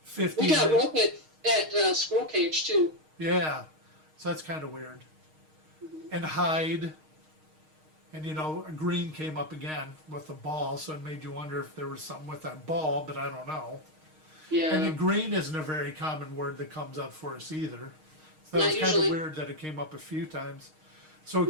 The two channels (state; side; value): late; left; 6.4 ms